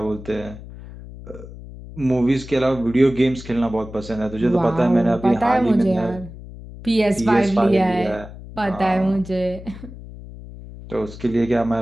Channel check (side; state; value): left; noise; hum, 15 dB below the sound